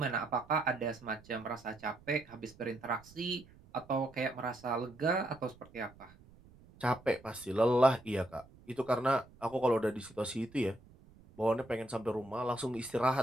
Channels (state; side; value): noise; right; rumble, 24 dB below the sound